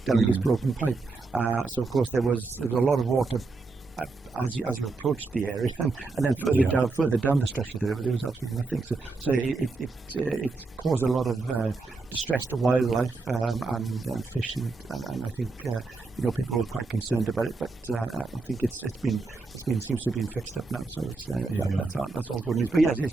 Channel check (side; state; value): left; quieter; 3.7 dB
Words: this broken pipe. So of course there was a lot of water as you approached the area, and then further down the stretch of the river, there was absolutely nothing. So it caused a lot of distress to wildlife and fish, and I think people were quite concerned about it. But I think it's been seems to have been fixed up now. So it's that's all good news. But yes,